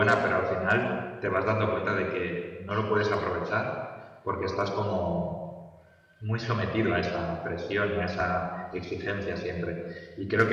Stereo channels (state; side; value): identical; both; correlation 1.00